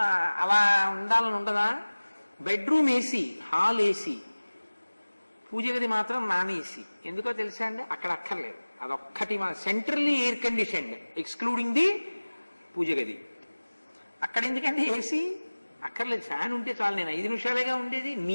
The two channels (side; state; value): both; inverted; correlation -1.00